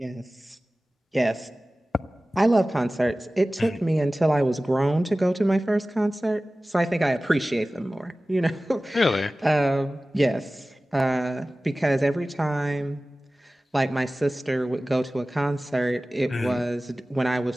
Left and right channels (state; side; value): normal; both; correlation 0.97